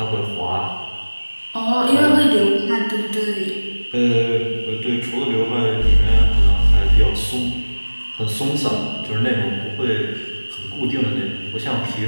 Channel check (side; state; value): both; inverted; correlation -1.00